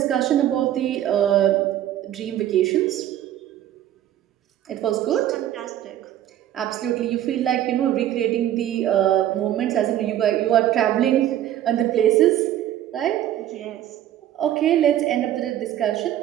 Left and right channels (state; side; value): quieter; left; 12.1 dB